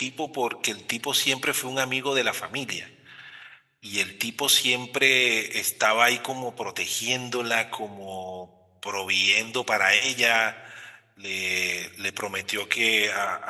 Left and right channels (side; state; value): both; identical; correlation 1.00